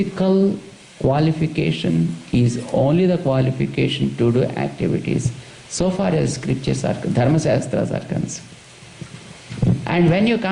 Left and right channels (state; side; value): identical; both; correlation 1.00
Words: qualification is only the qualification to do activities. So far as scriptures are, Dharma Shastras are concerned. And when you